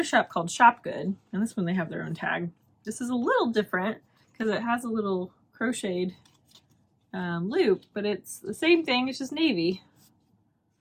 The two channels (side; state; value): both; identical; correlation 1.00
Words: shop called Shop Good, and this one they have their own tag. This is a little different because it has a little crocheted loop, but it's the same thing. It's just navy.